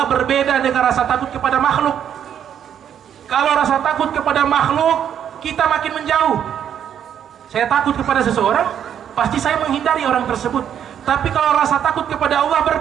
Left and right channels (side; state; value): left; quieter; 9.2 dB